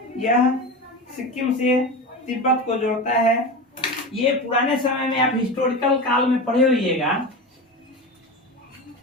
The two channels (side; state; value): both; normal; correlation 0.25